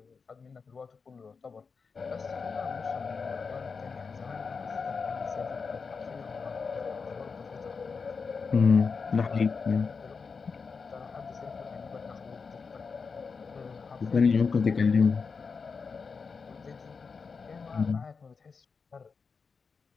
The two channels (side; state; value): right; quieter; 5.1 dB